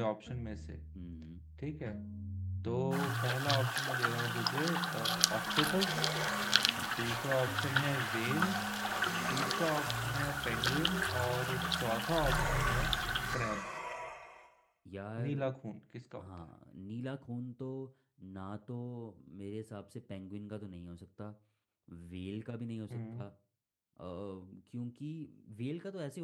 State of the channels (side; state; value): both; identical; correlation 1.00